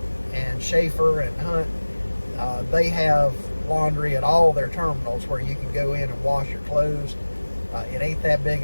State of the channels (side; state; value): both; inverted; correlation -1.00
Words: and Schaefer and Hunt, they have laundry at all their terminals where you can go in and wash your clothes. It ain't that big